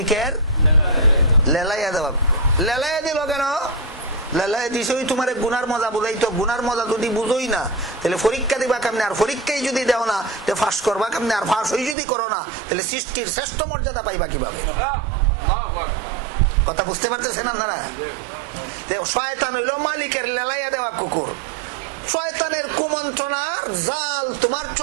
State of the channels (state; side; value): drops out; left; at 12.0 s